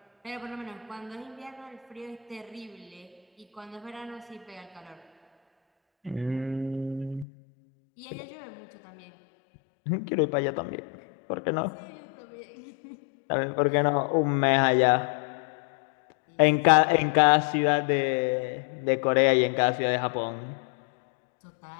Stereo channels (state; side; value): drops out; right; at 7.2 s